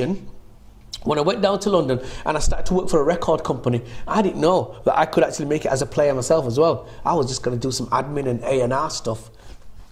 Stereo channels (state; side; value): identical; both; correlation 1.00